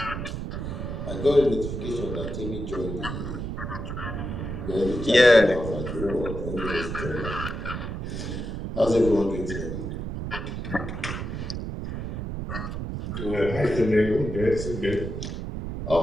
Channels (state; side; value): noise; right; rumble, 5 dB below the sound